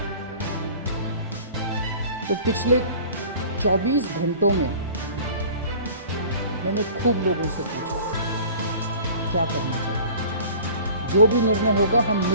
तो पिछले 24 घंटों में मैंने खूब लोगों से पूछा क्या करना चाहिए। जो भी निर्णय होगा हम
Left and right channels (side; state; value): both; inverted; correlation -0.44